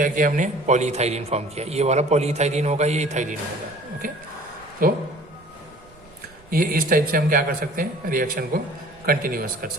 किया हमने, पॉली इथाइलिन फॉर्म किया, ये वाला पॉली इथाइलिन होगा, ये इथाइलिन होगा। ओके, तो ये इस टाइप से हम क्या कर सकते हैं, रिएक्शन को कंटिन्यूअस कर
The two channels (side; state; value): right; noise; rumble, 27 dB below the sound